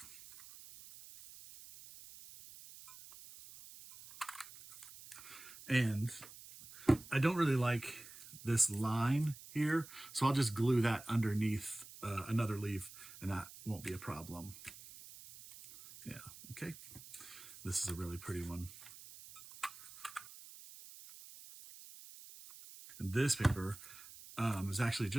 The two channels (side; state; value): right; noise; hiss, 16 dB below the sound